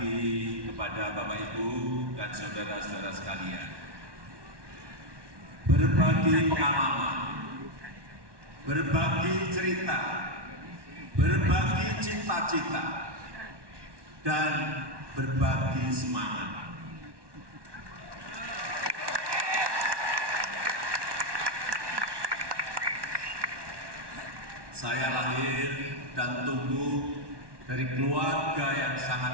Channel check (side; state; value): left; late; 1.2 ms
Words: kepada Bapak Ibu dan saudara-saudara sekalian. Berbagi pengalaman, berbagi cerita, berbagi cita-cita, dan berbagi semangat. Saya lahir dan tumbuh dari keluarga yang